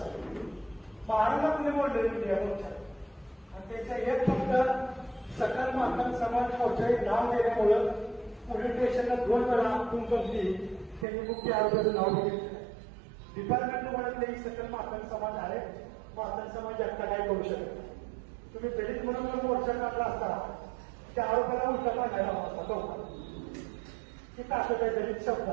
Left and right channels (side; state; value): left; drops out; at 11.1 s